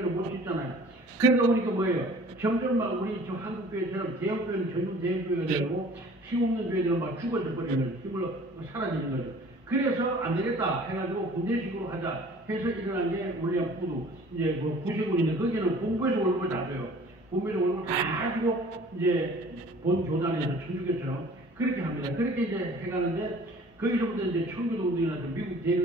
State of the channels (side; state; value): both; normal; correlation 0.49